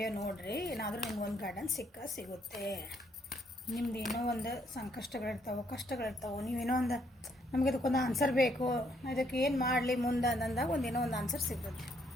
ನೋಡಿರಿ, ಏನಾದರೂ ನಿಮ್ಗೆ ಒಂದು ಗೈಡೆನ್ಸ್ ಸಿಗುತ್ತೆ. ನಿಮ್ದು ಏನೋ ಒಂದು ಸಂಕಷ್ಟಗಳಿರ್ತಾವೆ, ಕಷ್ಟಗಳಿರ್ತಾವೆ, ನೀವೇನೋ ಒಂದು ನಮಗೆ ಅದಕ್ಕೊಂದು ಆನ್ಸರ್ ಬೇಕು, ಇದಕ್ಕೆ ಏನು ಮಾಡಲಿ ಮುಂದೆ ಅಂದಾಗ ಒಂದೇನೋ ಒಂದು ಆನ್ಸರ್ ಸಿಗ್ತದೆ.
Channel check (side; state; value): both; normal; correlation 0.70